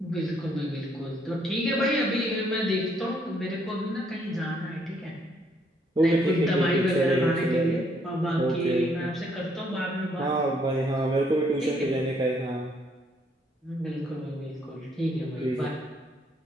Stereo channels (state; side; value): normal; both; correlation 0.69